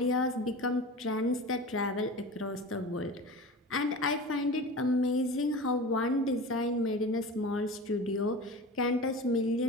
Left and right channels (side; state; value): both; normal; correlation 0.33